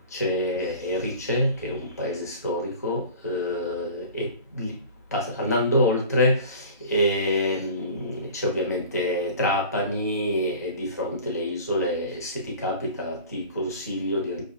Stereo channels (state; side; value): inverted; both; correlation -0.40